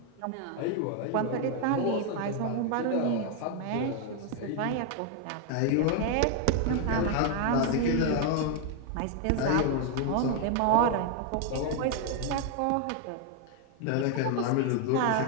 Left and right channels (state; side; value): different; both; correlation 0.00